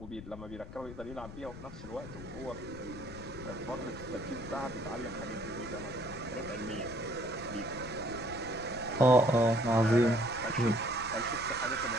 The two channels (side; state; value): left; noise; rumble, 13 dB below the sound